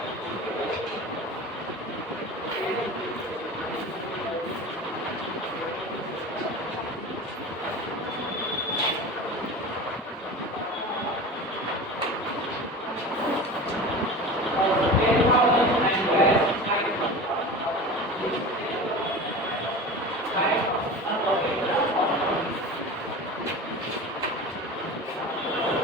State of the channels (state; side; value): normal; both; correlation 0.33